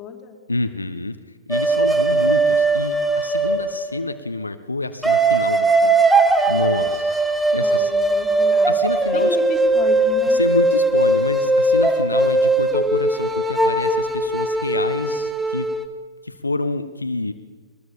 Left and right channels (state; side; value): normal; both; correlation 0.54